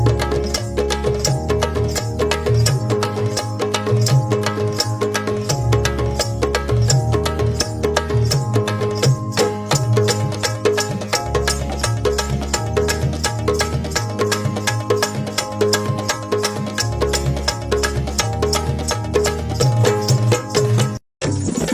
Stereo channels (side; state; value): both; identical; correlation 1.00